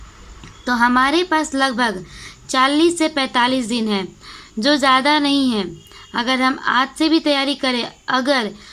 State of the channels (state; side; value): identical; both; correlation 1.00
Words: तो हमारे पास लगभग 40 से 45 दिन है, जो ज़्यादा नहीं है। अगर हम आज से भी तैयारी करें, अगर